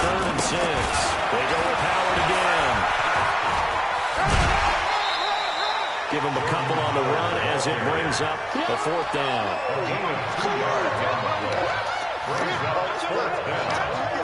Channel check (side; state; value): both; identical; correlation 1.00